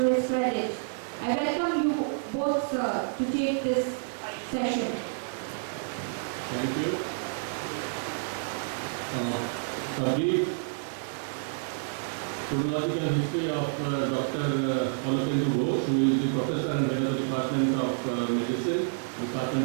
his credit. I welcome you both, sir, to take this session. Thank you. A brief chronological history of Dr. Alokendu Ghosh, who is the professor and head of the Department of Medicine,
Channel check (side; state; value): left; silent; digital silence